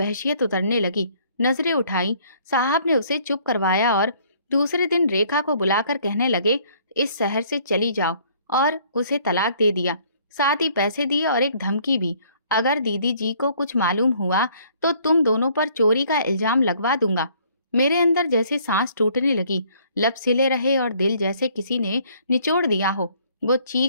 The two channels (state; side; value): inverted; both; correlation -0.61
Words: उतरने लगी। नजरें उठाई, साहब ने उसे चुप करवाया और दूसरे दिन रेखा को बुलाकर कहने लगे, इस शहर से चली जाओ, और उसे तलाक दे दिया। साथ ही पैसे दिए और एक धमकी भी, अगर दीदी जी को कुछ मालूम हुआ तो तुम दोनों पर चोरी का इल्जाम लगवा दूंगा। मेरे अंदर जैसे सांस टूटने लगी, लब सिले रहे और दिल जैसे किसी ने निचोड़ दिया हो। वो